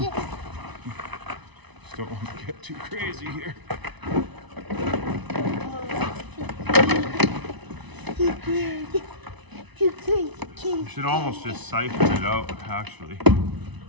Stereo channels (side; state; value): left; late; 1.0 ms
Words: Just don't want to get too crazy here. Too crazy. You should almost just siphon it out, actually. I